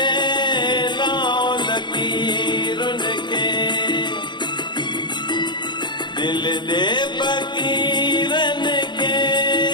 लाओ लकीरुन के दिल दे फकीरन के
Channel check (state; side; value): late; right; 0.22 ms